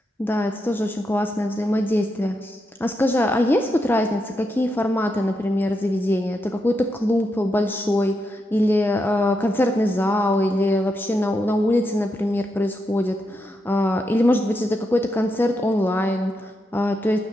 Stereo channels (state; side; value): normal; both; correlation 0.83